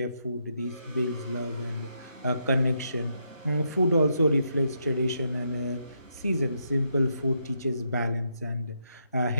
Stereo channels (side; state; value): both; inverted; correlation -0.79